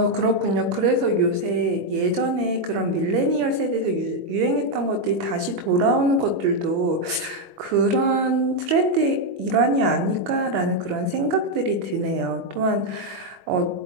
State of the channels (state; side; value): late; left; 22 ms